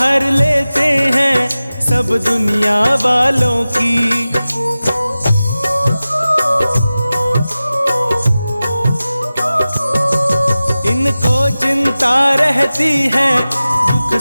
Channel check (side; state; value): both; inverted; correlation -0.96